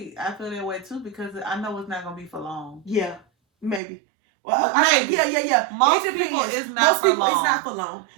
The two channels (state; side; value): drops out; left; at 3.8 s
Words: I feel that way too because I know it's not gonna be for long. Yeah, maybe. Well, maybe. Yeah. Most people, it's not for long. It's not for long.